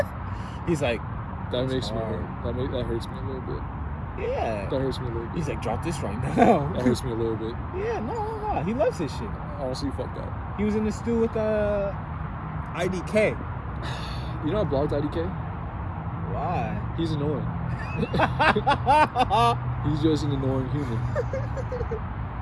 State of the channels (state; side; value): identical; both; correlation 1.00